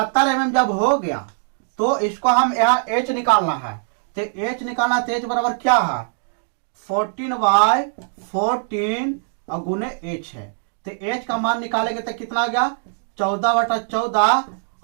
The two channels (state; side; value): silent; left; digital silence